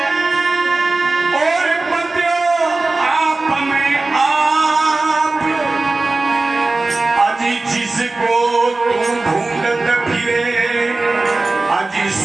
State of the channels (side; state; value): left; quieter; 3.3 dB